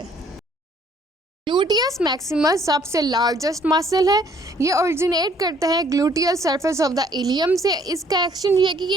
ग्लूटियस मैक्सिमस सबसे लार्जेस्ट मसल है। ये ओरिजिनेट करता है gluteal surface of the ilium से। इसका एक्शन ये है कि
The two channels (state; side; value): normal; both; correlation 0.62